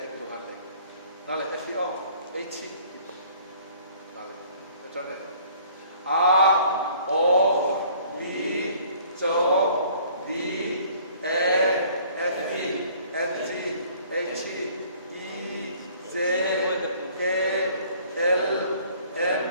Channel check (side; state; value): both; inverted; correlation -0.56